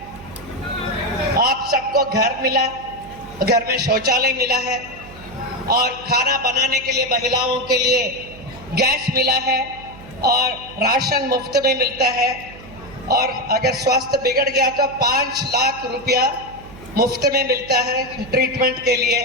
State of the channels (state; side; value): noise; right; hum, 19 dB below the sound